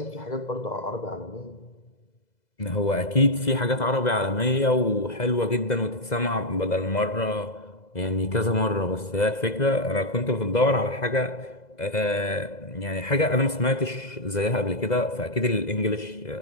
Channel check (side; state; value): right; late; 2.0 ms